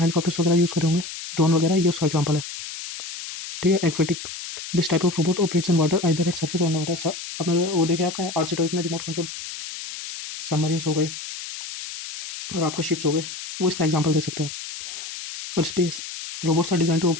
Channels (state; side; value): noise; left; hiss, 9 dB below the sound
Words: हेलीकॉप्टर्स वगैरह यूज़ करे होंगे, ड्रोन वगैरह, ये उसका एग्जाम्पल है, ठीक है। Aquatic, this type of robot operates in water either at surface और अंडर वाटर। आपने वो देखे आपने RC टॉयज में रिमोट कंट्रोल सबमरीन्स हो गए और आपका शिप्स हो गए, वो इसका एग्जाम्पल दे सकते हैं। और space, robots are design to